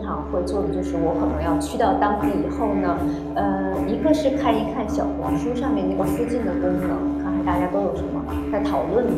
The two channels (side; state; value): both; identical; correlation 1.00